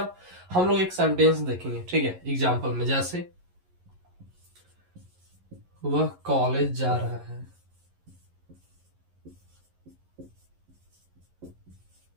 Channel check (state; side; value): late; left; 11 ms